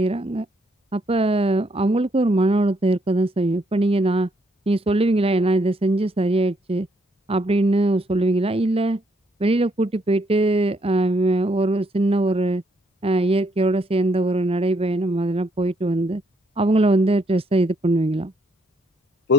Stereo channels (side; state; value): both; normal; correlation 0.72